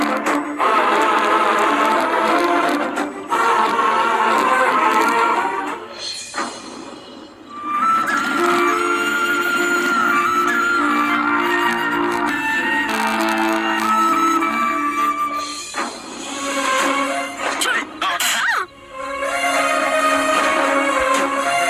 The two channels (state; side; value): identical; both; correlation 1.00